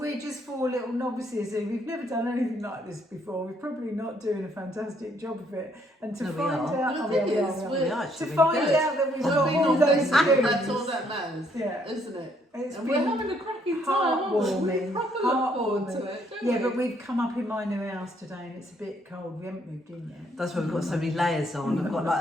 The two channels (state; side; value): normal; both; correlation 0.69